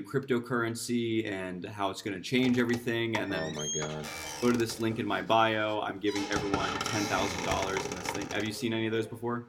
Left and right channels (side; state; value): both; identical; correlation 1.00